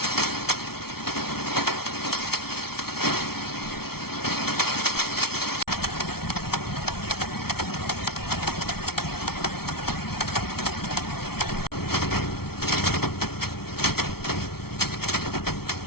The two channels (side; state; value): right; late; 0.95 ms